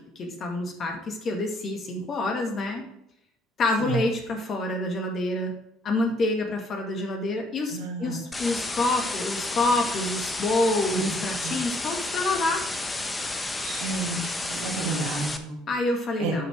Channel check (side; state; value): both; normal; correlation 0.66